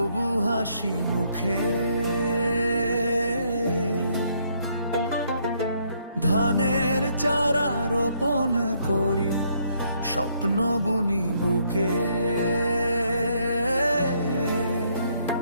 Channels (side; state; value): both; inverted; correlation -0.70